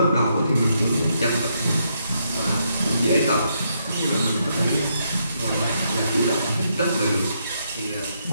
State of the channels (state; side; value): inverted; both; correlation -0.77